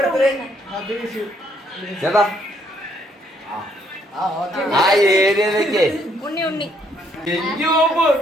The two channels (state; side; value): normal; both; correlation 0.69